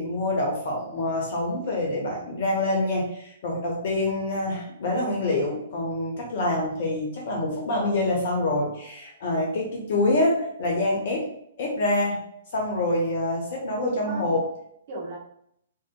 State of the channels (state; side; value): inverted; both; correlation -0.47